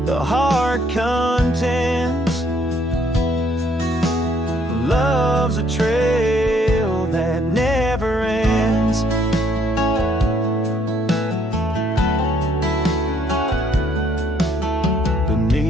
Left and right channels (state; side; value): normal; both; correlation 0.66